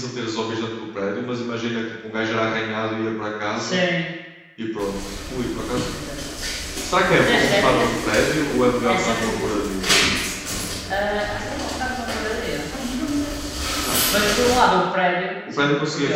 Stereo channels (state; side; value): identical; both; correlation 1.00